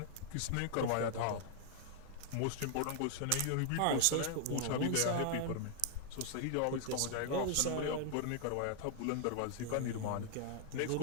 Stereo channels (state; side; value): different; both; correlation 0.00